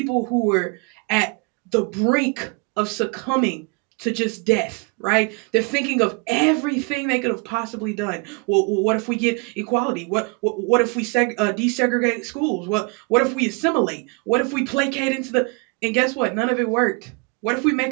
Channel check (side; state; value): left; quieter; 31.0 dB